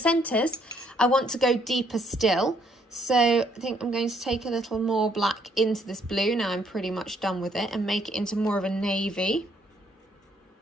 I want to go deeper still. So I think I'm going to take a little more black into this blue. Now I'm pretty much done with it, and make it into more of a navy.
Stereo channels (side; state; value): both; normal; correlation 0.68